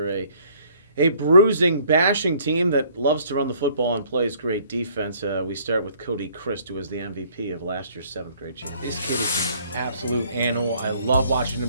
a bruising, bashing team that loves to run the football and plays great defense. We start with Cody Christ, who was the MVP of last year's 7th grade champion. This kid is an absolute animal. I love watching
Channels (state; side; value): inverted; both; correlation -0.60